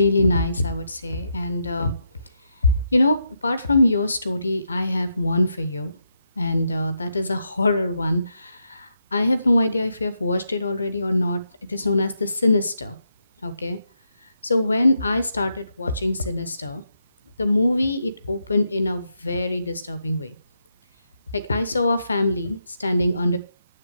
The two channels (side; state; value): both; inverted; correlation -0.81